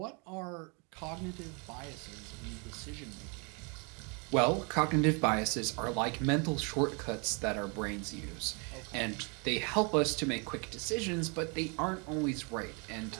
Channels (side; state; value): left; quieter; 33.4 dB